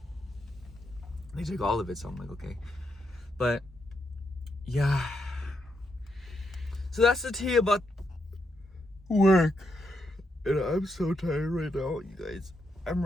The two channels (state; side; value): normal; both; correlation 0.81